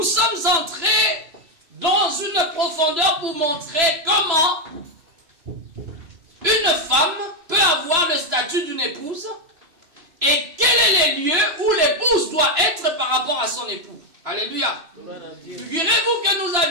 sommes entrés dans une profondeur pour montrer comment une femme peut avoir le statut d'une épouse et quels sont les lieux où l'épouse doit être par rapport à son époux. Alléluia. Figurez-vous que nous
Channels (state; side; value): late; left; 3.0 ms